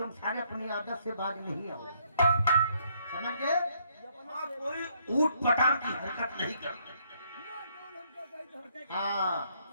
सारे अपनी आदत से बाज नहीं आओ। समझ गए? हाँ, कोई ऊट पटांग की हरकत नहीं करते। हाँ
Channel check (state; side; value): inverted; both; correlation -0.69